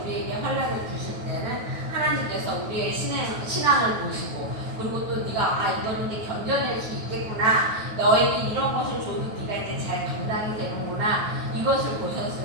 우리에게 환난을 주실 때는 하나님께서 우리의 신앙을 보시고, 그리고 또 네가 이거는 네 견뎌낼 수 있겠구나, 너에게 이런 것을 줘도 네가 이제 잘 감당이 되는구나, 이것을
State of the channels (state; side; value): late; left; 9.3 ms